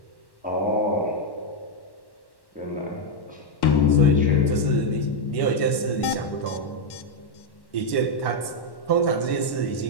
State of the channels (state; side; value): late; right; 1.1 ms